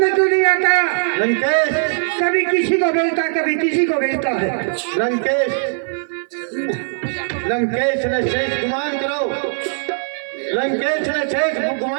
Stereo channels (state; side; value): silent; left; 56 dB below the other